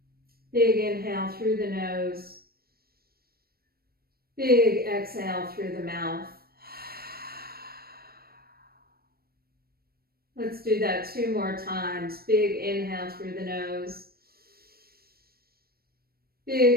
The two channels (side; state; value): left; late; 0.44 ms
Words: Big inhale through the nose. Big exhale through the mouth. Let's do that 2 more times. Big inhale through the nose.